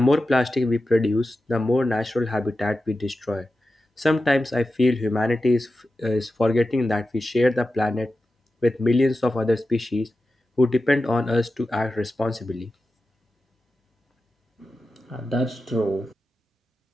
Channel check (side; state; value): both; normal; correlation 0.92